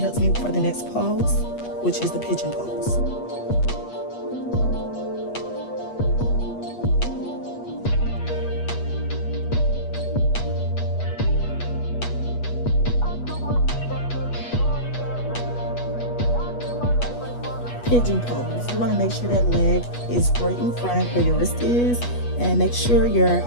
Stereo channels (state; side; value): late; right; 8.3 ms